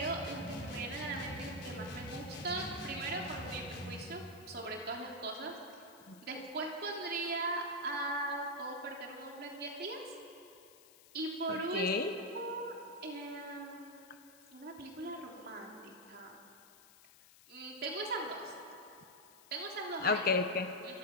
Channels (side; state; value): left; noise; hiss, 22 dB below the sound